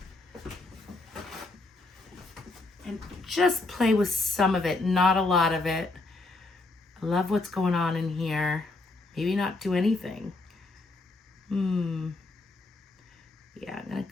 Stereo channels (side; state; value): right; quieter; 3.2 dB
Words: and just play with some of it, not a lot of it. I love what's going on in here. Maybe not do anything. Yeah, I'm gonna